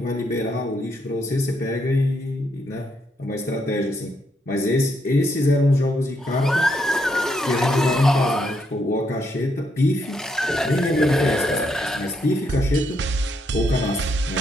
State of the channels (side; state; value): both; normal; correlation 0.77